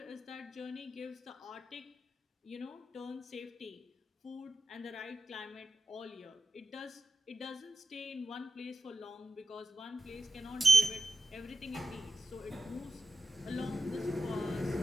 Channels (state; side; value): normal; both; correlation 0.92